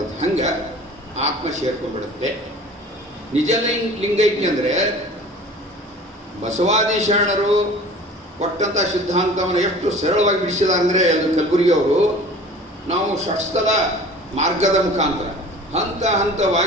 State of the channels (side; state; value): both; normal; correlation 0.43